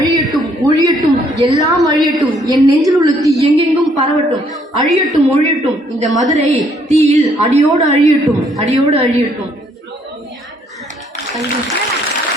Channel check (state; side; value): normal; both; correlation 0.67